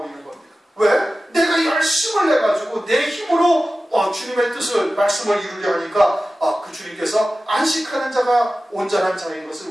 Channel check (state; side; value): normal; both; correlation 0.95